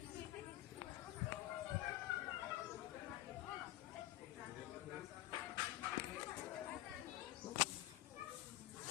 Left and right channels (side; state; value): right; quieter; 16.2 dB